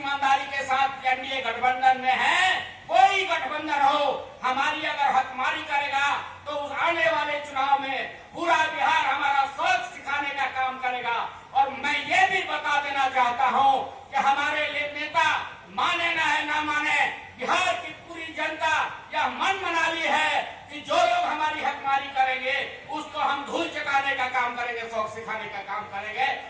के साथ एनडीए गठबंधन में हैं, कोई गठबंधन हो, हमारी अगर हकमारी करेगा तो उस आने वाले चुनाव में पूरा बिहार हमारा सोच सिखाने का काम करेगा। और मैं ये भी बता देना चाहता हूं कि हमारे नेता माने ना माने, बिहार की पूरी जनता यह मन बना ली है कि जो लोग हमारी हकमारी करेंगे उसको हम धूल चटाने का काम करेंगे, शौक सिखाने का काम करेंगे।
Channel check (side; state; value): both; identical; correlation 1.00